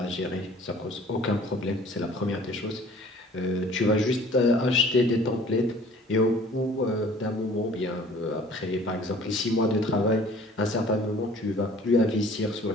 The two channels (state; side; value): normal; both; correlation 0.51